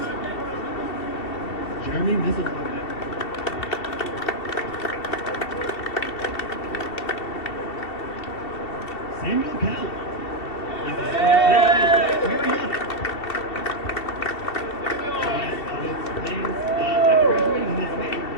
Jeremy Misalaga. Samuel Cowell.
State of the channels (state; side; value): late; right; 2.7 ms